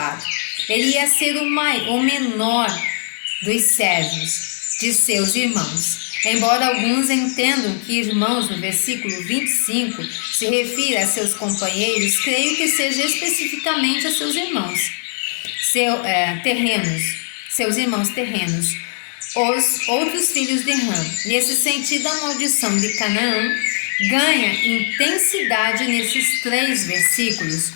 Ele ia ser o menor dos servos de seus irmãos. Embora alguns entendam que irmãos no versículo 25 se refira a seus companheiros, creio que seja especificamente a seus irmãos seus irmãos terrenos, os outros filhos de Ham. Nesse sentido, a maldição de Canaã ganha intensidade nesses 3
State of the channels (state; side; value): silent; right; 61 dB below the other